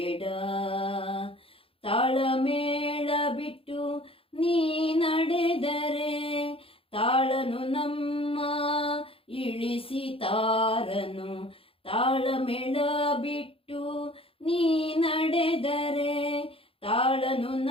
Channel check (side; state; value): right; late; 0.27 ms